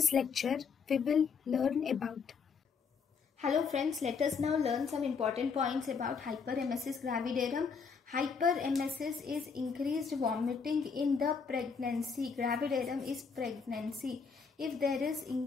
lecture, we will learn about. Hello friends, let us now learn some important points about hyperemesis gravidarum. Hyperemesis is increased vomiting in the pregnancy. Gravidarum is pregnancy. If there is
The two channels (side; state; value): right; quieter; 5.6 dB